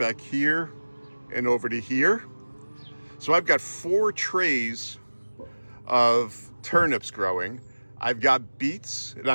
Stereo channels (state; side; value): inverted; both; correlation -1.00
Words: and over to here. So I've got 4 trays of turnips growing. I've got beets, and